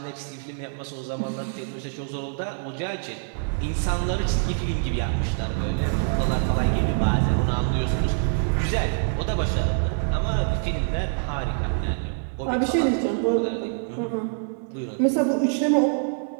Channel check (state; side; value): silent; left; 62 dB below the other